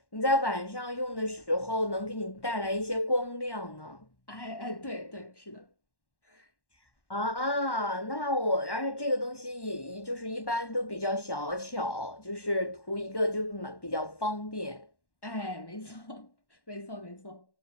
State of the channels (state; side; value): late; right; 1.1 ms